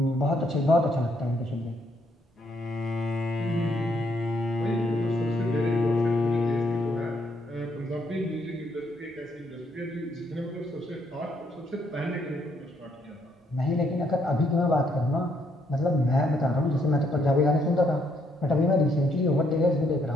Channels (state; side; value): normal; both; correlation 0.72